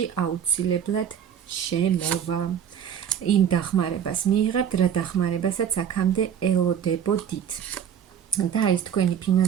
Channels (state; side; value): quieter; left; 8.8 dB